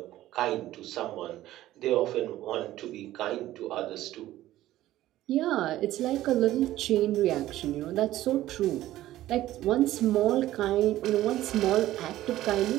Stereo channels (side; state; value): left; quieter; 14.7 dB